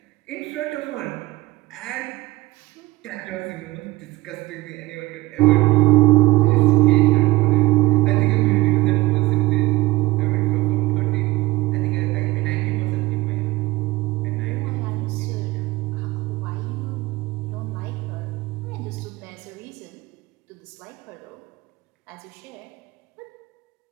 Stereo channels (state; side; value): quieter; left; 19.8 dB